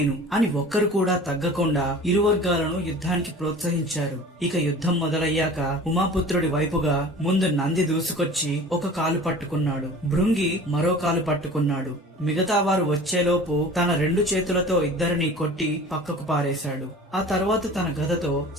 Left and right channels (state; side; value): normal; both; correlation 0.42